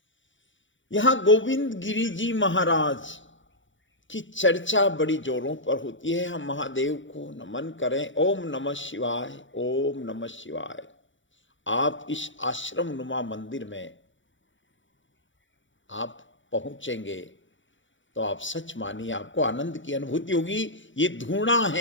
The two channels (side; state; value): right; late; 0.56 ms